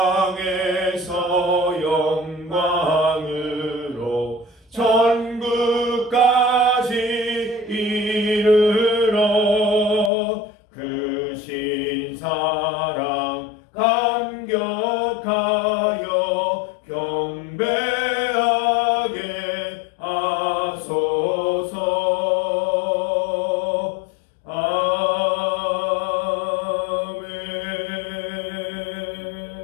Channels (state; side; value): drops out; right; at 10.1 s